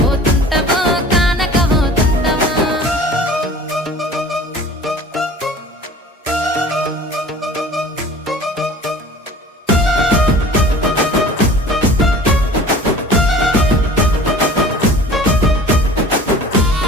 పోతుంటావో కానక పోతుంటావో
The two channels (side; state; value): both; normal; correlation 0.44